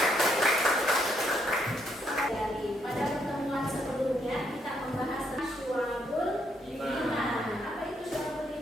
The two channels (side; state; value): both; normal; correlation 0.74